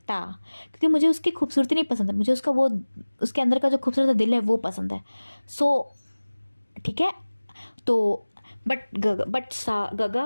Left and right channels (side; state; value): both; inverted; correlation -1.00